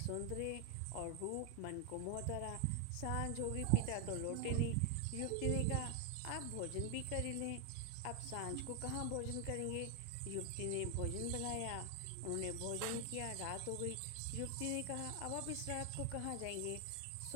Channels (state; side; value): different; both; correlation 0.00